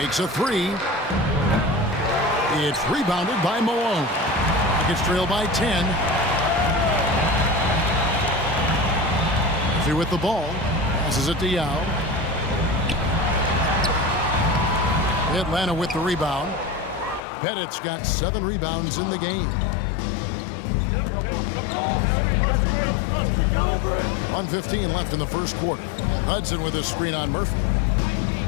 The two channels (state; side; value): drops out; right; at 17.2 s